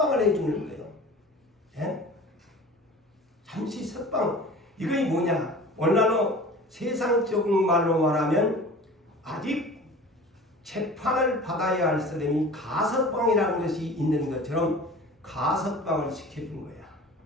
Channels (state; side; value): normal; both; correlation 0.40